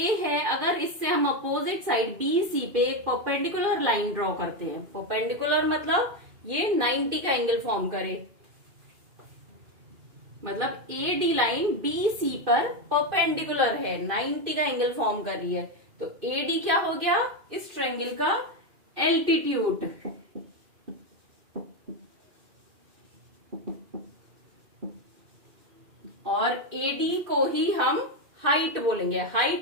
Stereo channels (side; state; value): left; late; 2.5 ms